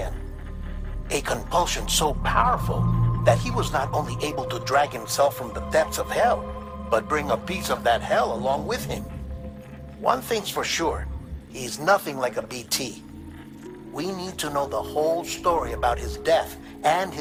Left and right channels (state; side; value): identical; both; correlation 1.00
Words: A compulsion so powerful that he was not only able to drag himself from the depths of hell, but bring a piece of that hell along with him. One thing's for sure, he's nothing like a BT. We need to know the whole story about his death and